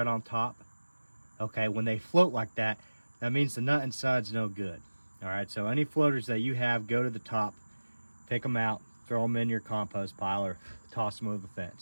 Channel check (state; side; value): inverted; both; correlation -1.00